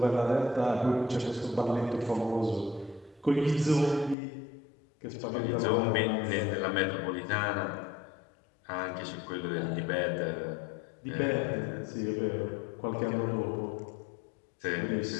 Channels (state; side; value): drops out; right; at 4.2 s